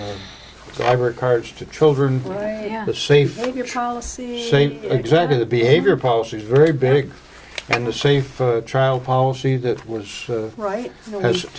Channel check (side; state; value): both; identical; correlation 1.00